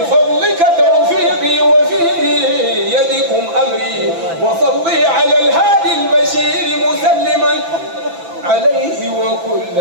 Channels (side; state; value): left; late; 6.0 ms